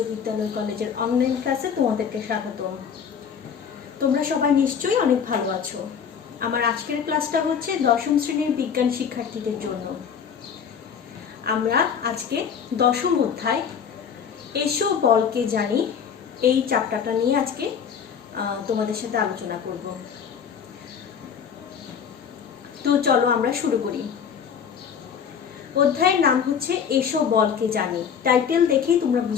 বিদ্যালয় কলেজের অনলাইন ক্লাসে তোমাদেরকে স্বাগতম। তোমরা সবাই নিশ্চয়ই অনেক ভালো আছো। আমার আজকের ক্লাসটা হচ্ছে দশম শ্রেণীর বিজ্ঞান শিক্ষার্থীদের জন্য। আমরা আজকে দশম অধ্যায় এসো বলকে জানি এই চ্যাপ্টারটা নিয়ে আজকে তোমাদের সাথে আলোচনা করব। তো চলো আমরা শুরু করি। অধ্যায়ের নাম হচ্ছে এসো বলকে জানি। টাইটেল দেখেই তোমরা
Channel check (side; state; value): right; quieter; 7.3 dB